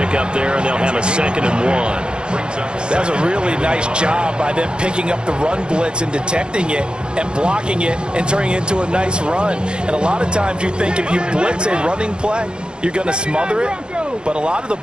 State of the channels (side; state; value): left; late; 0.050 ms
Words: there, and they'll have a 2nd and 1. That was a really nice job by them picking up the run blitz and detecting it and blocking it and turning it into a nice run. And a lot of times you think if you blitz a running play, you're going to smother it. But a lot of the